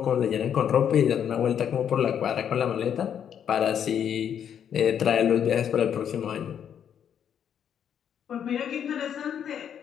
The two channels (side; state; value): right; quieter; 8.8 dB